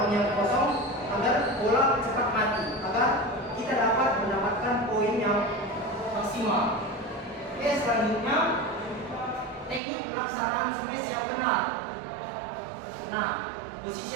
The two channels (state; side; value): drops out; left; at 9.8 s